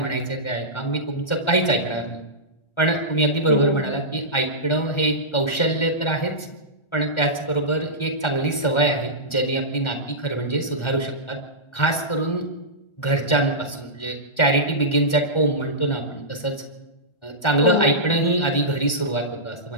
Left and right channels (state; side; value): late; right; 1.4 ms